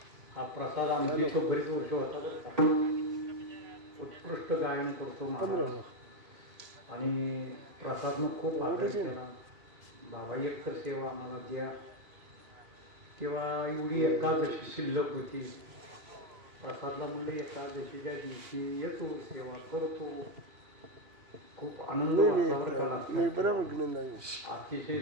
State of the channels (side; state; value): left; late; 3.0 ms